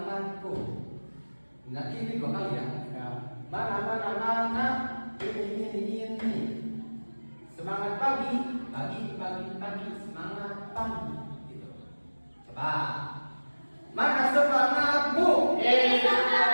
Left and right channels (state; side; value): inverted; both; correlation -1.00